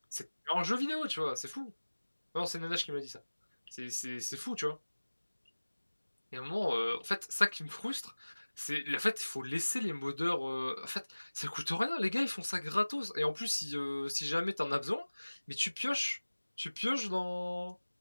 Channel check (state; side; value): inverted; both; correlation -1.00